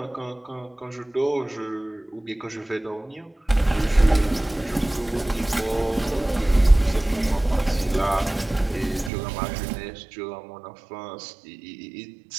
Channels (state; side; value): drops out; left; at 9.1 s